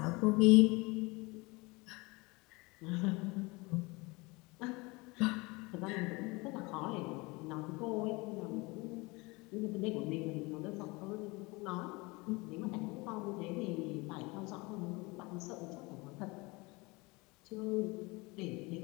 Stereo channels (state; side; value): quieter; right; 25.2 dB